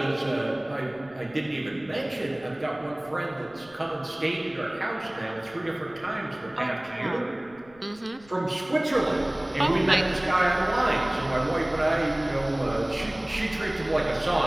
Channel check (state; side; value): noise; left; rumble, 26 dB below the sound